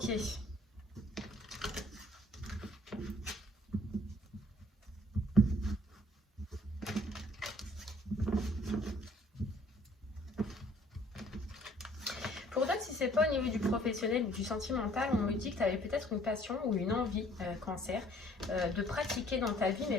Pour d'autres, si c'est pas au niveau du professionnel ou du sentimental, on me dit que tu avais peut-être une passion ou une envie, cancer, de pratiquer dans ta vie, mais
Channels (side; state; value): both; normal; correlation 0.58